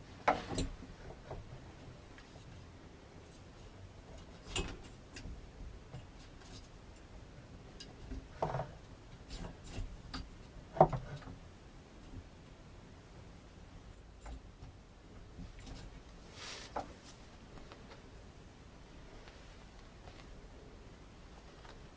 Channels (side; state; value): both; identical; correlation 1.00